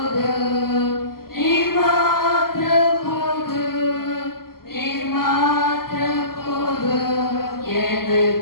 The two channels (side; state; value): right; late; 0.92 ms